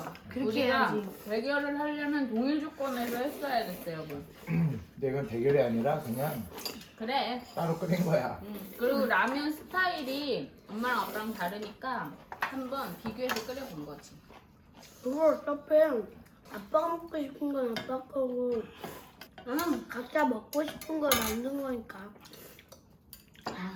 그렇게 우리가 해야지. 대결을 하려면 동일 조건에서 했어야겠어, 여러분. 근데 이건 대결이 아니라 그냥 그래. 따로 끓인 거야. 그리고 라면 스타일이 엄마랑 아빠랑 다르니까 한번 비교해서 끓여본 거지. 그거 어차피 아빠가 먹고 싶은 건 아빠 거고 각자 먹고 싶은 걸 만든 거니까.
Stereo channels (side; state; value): both; identical; correlation 1.00